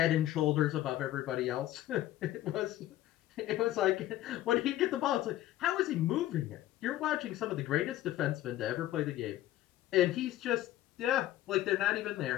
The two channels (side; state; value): right; quieter; 14.4 dB